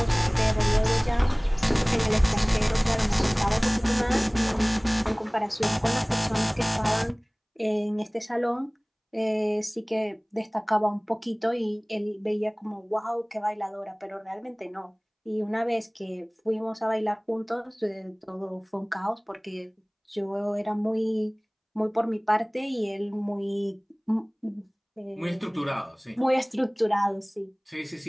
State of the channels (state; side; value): identical; both; correlation 1.00